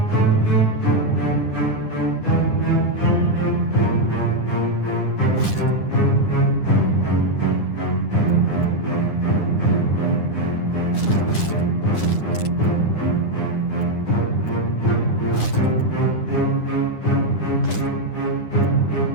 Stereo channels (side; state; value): right; late; 9.9 ms